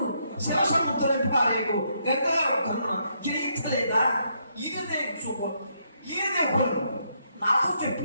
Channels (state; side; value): inverted; both; correlation -0.75